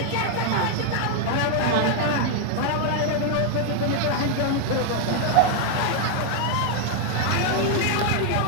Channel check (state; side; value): different; both; correlation 0.00